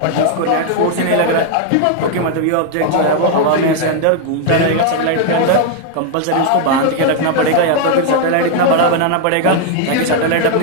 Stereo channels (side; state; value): both; different; correlation 0.00